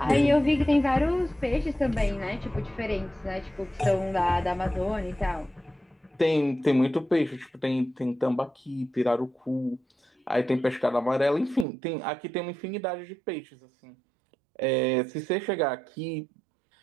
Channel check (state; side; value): drops out; left; at 11.7 s